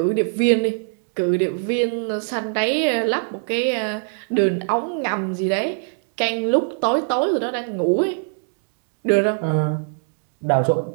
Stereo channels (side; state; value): left; silent; 62 dB below the other